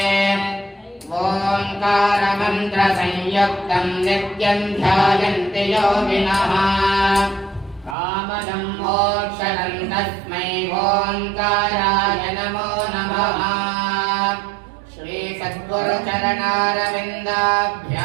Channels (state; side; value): drops out; left; at 8.0 s